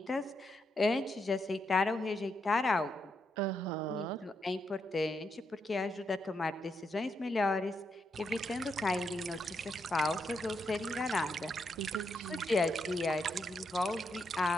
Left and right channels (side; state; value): both; normal; correlation 0.81